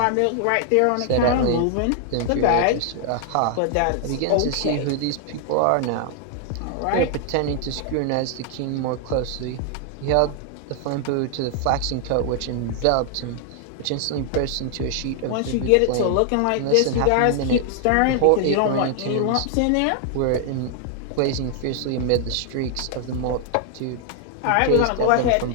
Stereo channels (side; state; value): both; different; correlation 0.00